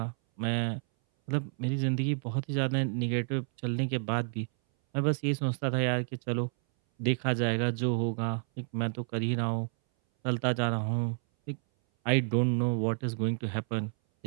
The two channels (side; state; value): left; silent; 58 dB below the other